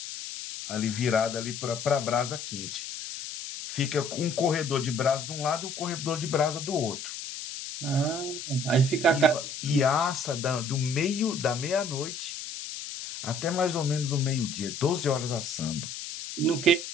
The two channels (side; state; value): left; noise; hiss, 8 dB below the sound